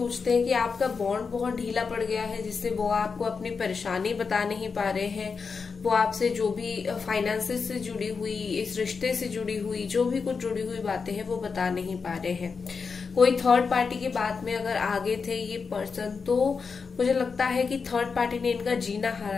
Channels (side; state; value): right; quieter; 5.2 dB